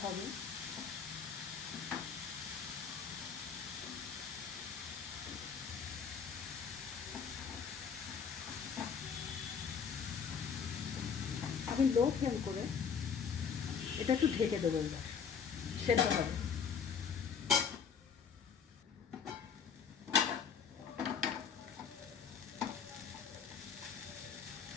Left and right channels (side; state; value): right; quieter; 6.6 dB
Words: হবে। আমি লো ফ্লেম করে এটা একটু ঢেকে দেবো। এবার সেদ্ধ হবে।